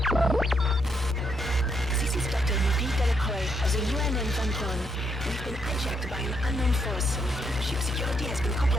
Of the UNN Von Braun. We've been hijacked by an unknown force. Ship security has been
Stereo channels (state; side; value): normal; both; correlation 0.76